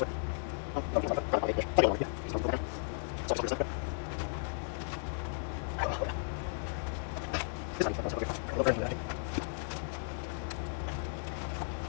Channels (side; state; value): right; silent; digital silence